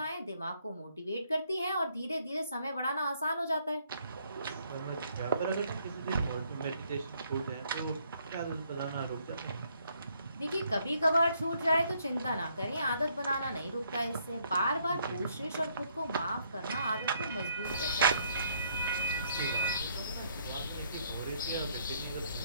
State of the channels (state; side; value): inverted; both; correlation -0.69